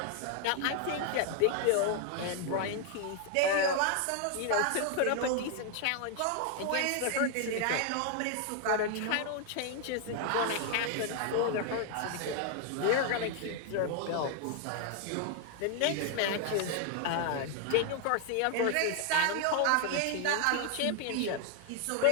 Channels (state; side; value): different; both; correlation 0.00